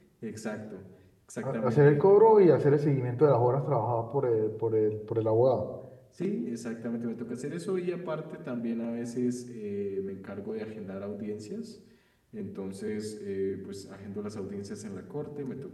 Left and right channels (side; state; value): both; identical; correlation 1.00